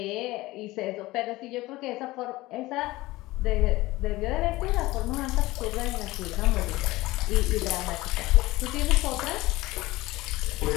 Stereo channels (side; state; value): right; quieter; 19.1 dB